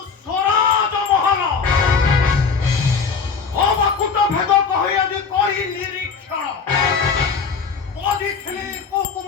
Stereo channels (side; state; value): right; quieter; 5.5 dB